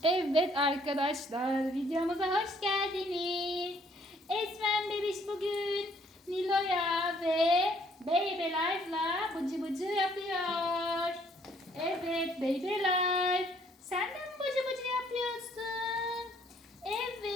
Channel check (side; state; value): both; normal; correlation 0.64